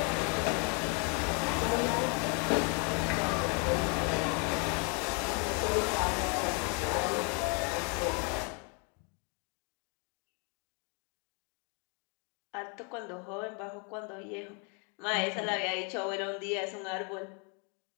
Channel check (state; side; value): quieter; right; 36.1 dB